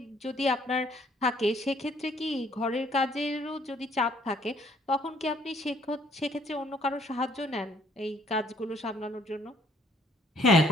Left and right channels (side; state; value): both; normal; correlation 0.63